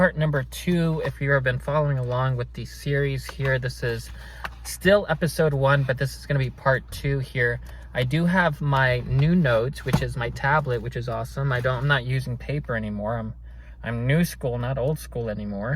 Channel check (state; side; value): identical; both; correlation 1.00